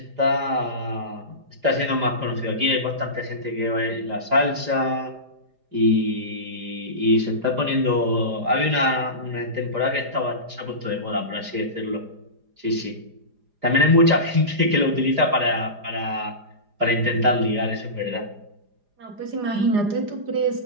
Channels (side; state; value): left; late; 4.9 ms